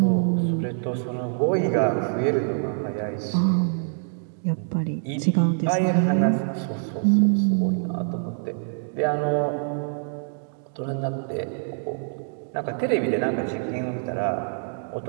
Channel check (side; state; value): left; silent; digital silence